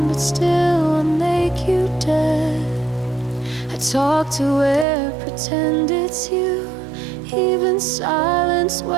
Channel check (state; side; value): drops out; left; at 4.9 s